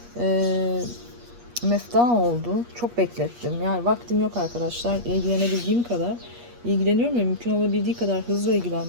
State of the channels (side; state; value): left; late; 8.4 ms